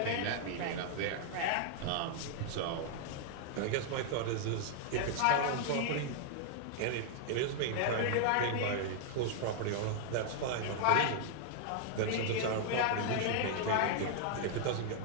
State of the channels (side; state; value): both; different; correlation -0.01